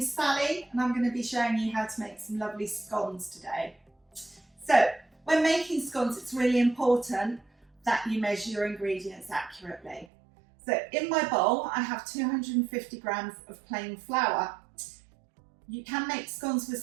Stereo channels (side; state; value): left; drops out; at 10.1 s